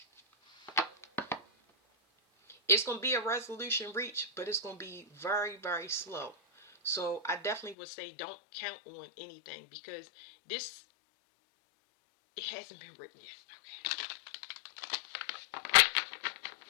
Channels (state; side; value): drops out; right; at 7.8 s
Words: It's going to be a resolution reached, but it's going to be very, very slow. So I definitely would say don't count on anything because this, it hasn't been written yet.